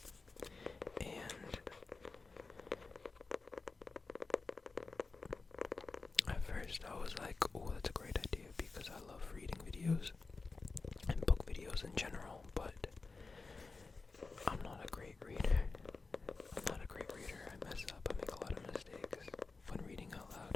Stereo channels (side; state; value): right; quieter; 4.0 dB